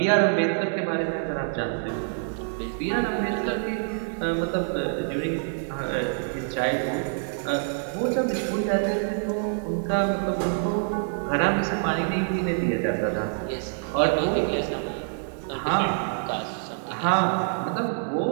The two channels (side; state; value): left; silent; 61 dB below the other